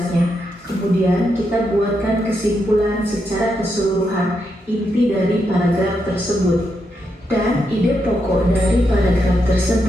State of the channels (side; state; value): both; normal; correlation 0.82